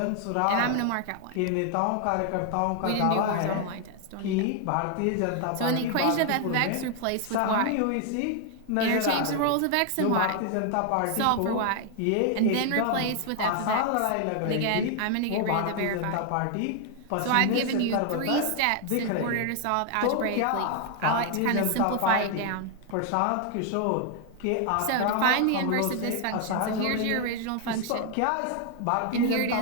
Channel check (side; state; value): both; different; correlation 0.00